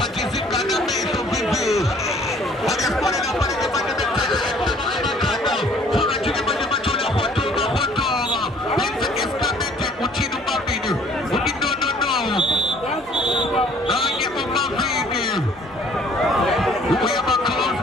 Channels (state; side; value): normal; both; correlation 0.57